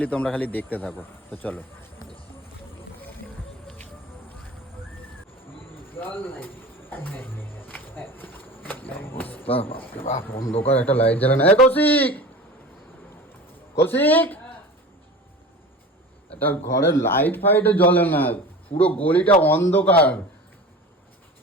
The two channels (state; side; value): normal; both; correlation 0.35